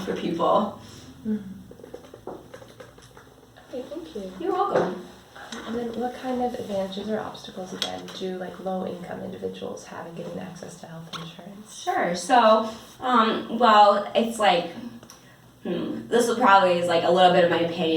for people. Okay, thank you. You're welcome. And then what kind of advantages or obstacles, again, do like low-income individuals have in getting access to health insurance? Sure. So, well, it's like, this will probably is like a little bit of my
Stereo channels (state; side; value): identical; both; correlation 1.00